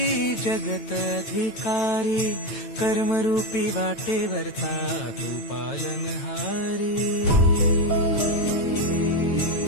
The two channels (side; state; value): right; late; 9.0 ms